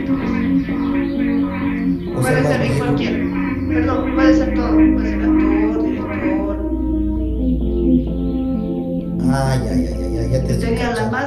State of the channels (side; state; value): both; identical; correlation 1.00